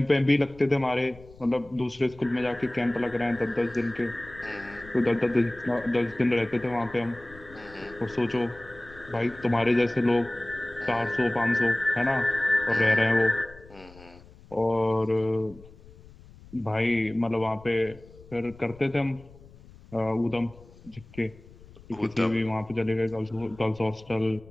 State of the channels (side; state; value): left; noise; rumble, 22 dB below the sound